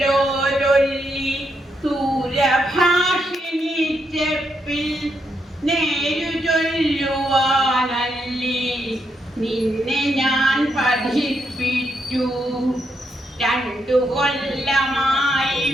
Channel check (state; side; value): normal; both; correlation 0.80